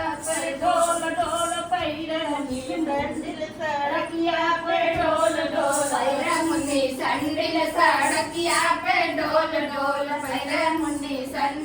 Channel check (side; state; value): both; identical; correlation 1.00